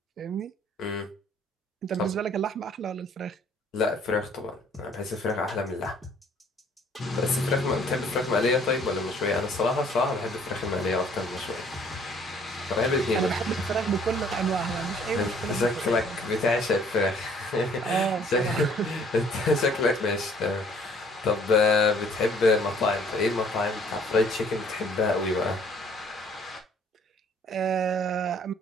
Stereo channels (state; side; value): normal; both; correlation 0.59